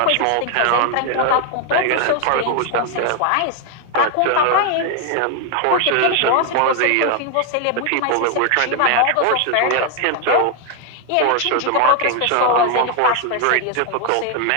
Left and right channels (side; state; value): both; different; correlation 0.01